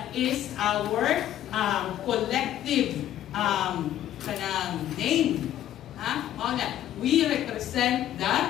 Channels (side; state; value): right; quieter; 12.0 dB